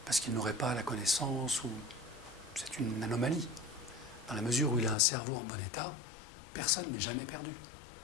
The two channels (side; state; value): right; drops out; at 5.0 s